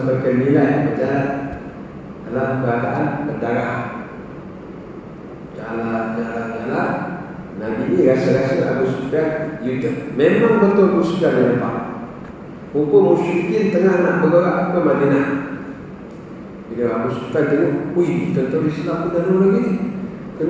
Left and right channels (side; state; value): both; identical; correlation 1.00